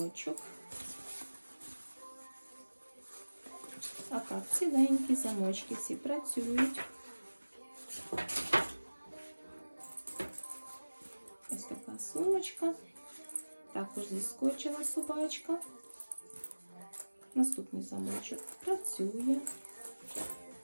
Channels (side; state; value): both; inverted; correlation -1.00